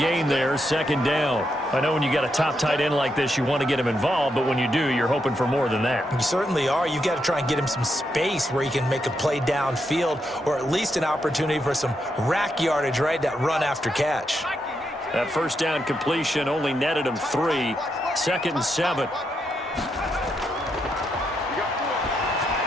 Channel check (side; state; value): both; normal; correlation 0.82